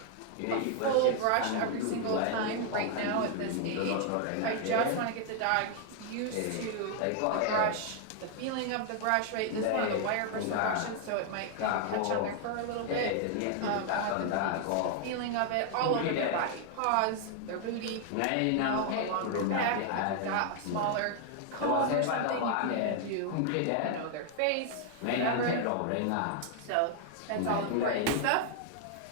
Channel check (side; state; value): both; different; correlation 0.00